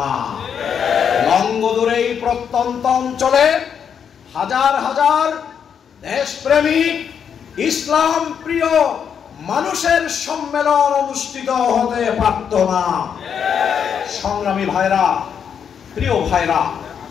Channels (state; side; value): quieter; right; 7.6 dB